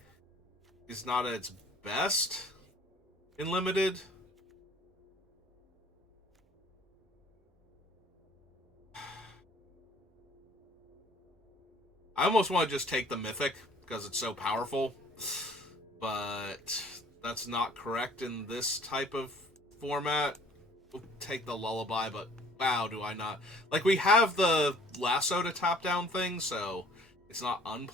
is not at its best in Limited. I almost want to just take the Mythic because it's so powerful, but that's not correct in this type of format. We'll take the Lullaby, but wow, do I not. Like, we have the Lasso to tap down thing, so it's not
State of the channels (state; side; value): normal; both; correlation 0.53